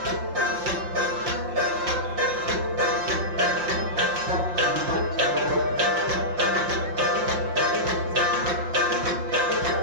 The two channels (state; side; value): late; left; 5.7 ms